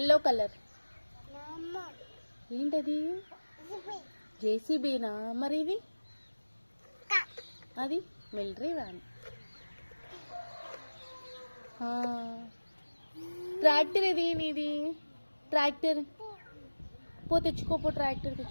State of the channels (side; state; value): both; inverted; correlation -1.00